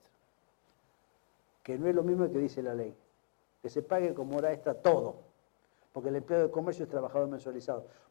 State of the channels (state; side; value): silent; right; digital silence